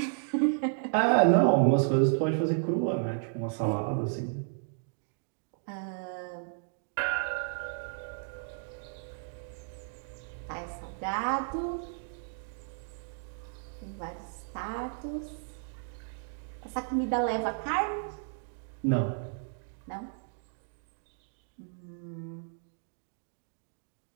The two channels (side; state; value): left; silent; digital silence